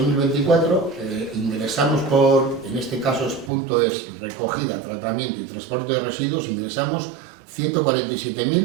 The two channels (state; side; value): drops out; left; at 3.5 s